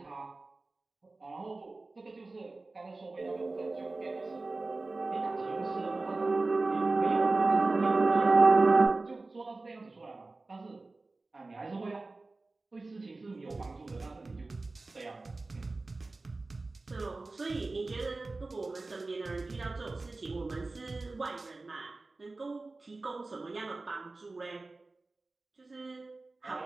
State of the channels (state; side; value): quieter; left; 3.4 dB